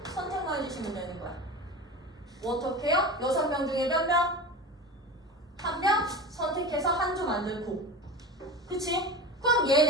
선택만 해주시면 되는 거야. 어떻게 해요? 6명 중에 몇 명? 1명 선택해서 한 조 만들고. 그치? 그럼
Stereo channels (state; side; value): normal; both; correlation 0.30